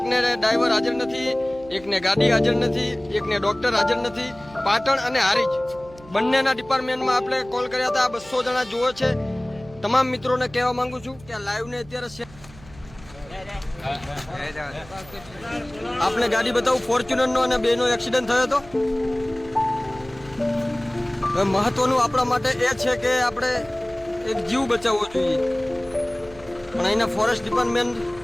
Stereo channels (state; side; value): noise; right; hum, 21 dB below the sound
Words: ડ્રાઈવર હાજર નથી, એકને ગાડી હાજર નથી, એકને ડોક્ટર હાજર નથી. પાટણ અને હારીજ બંનેના ડિપાર્ટમેન્ટમાં આપણે કોલ કર્યા હતા. 200 જણા જુઓ છે. તમામ મિત્રોને કહેવા માંગુ છું કે આ લાઈવને અત્યારે આપણે ગાડી બતાવું ફોર્ચ્યુનર નો અને બેનો એક્સિડન્ટ થયો હતો. હવે મહત્વનું આપણા માટે એ છે કે આપણે એક જીવ બચાવવો જોઈએ, પણ અહીંના ફોરેસ્ટ ડિપાર્ટમેન્ટ